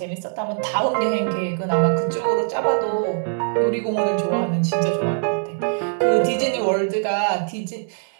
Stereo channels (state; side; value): silent; left; 64 dB below the other